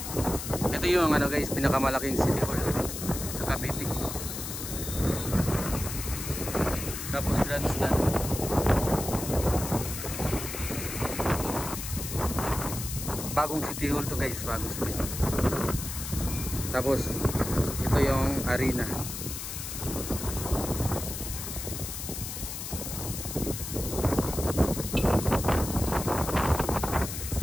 Ito yung ano guys, pinakamalaking city hall sa Cavite. Tapos grandstand. Bagong city hall to guys, bagong city hall. Tapos ito yung arena.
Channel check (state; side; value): noise; left; hiss, 7 dB below the sound